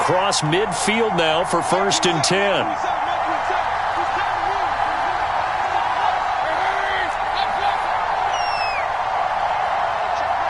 midfield now for 1st and 10.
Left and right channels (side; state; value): both; identical; correlation 1.00